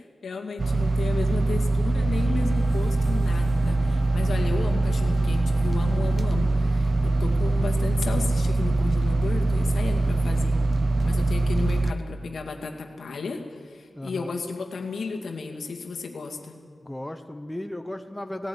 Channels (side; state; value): both; normal; correlation 0.95